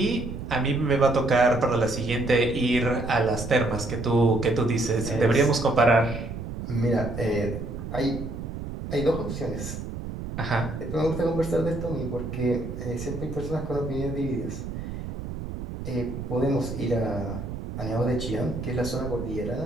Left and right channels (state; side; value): noise; right; rumble, 7 dB below the sound